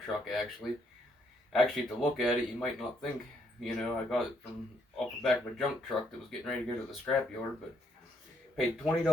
truck, actually. Actually, to look at it, you might not think, I got it from off the back of a junk truck that was getting ready to go to the scrap yard, but paid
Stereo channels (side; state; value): both; normal; correlation 0.72